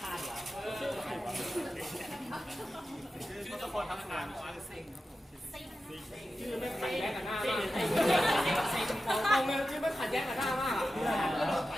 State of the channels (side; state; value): both; normal; correlation 0.92